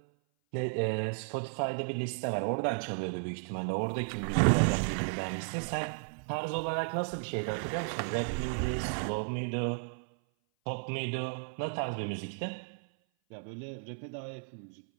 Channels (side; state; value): left; silent; 55 dB below the other